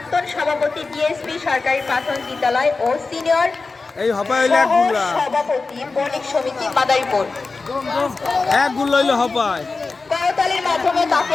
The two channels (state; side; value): quieter; right; 4.0 dB